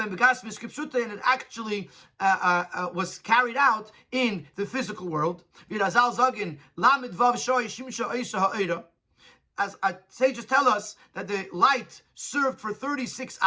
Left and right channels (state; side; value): identical; both; correlation 1.00